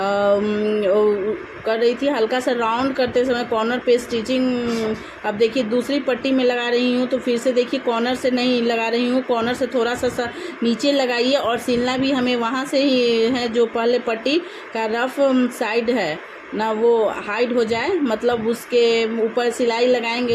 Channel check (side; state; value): both; identical; correlation 1.00